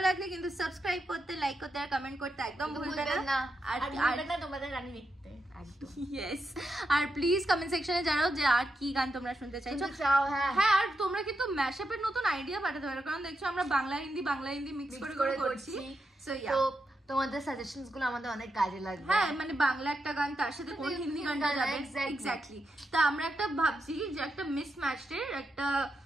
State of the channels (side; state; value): both; normal; correlation 0.85